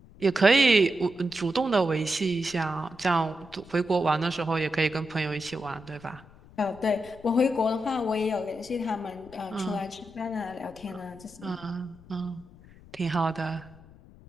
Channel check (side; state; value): left; noise; rumble, 22 dB below the sound